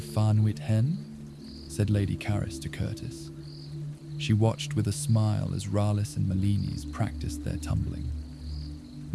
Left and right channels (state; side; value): identical; both; correlation 1.00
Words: Farnwit Hen, said Lady Caris to Curtis. She watched with a smile as Ralis and Melinis practiced their tumbling.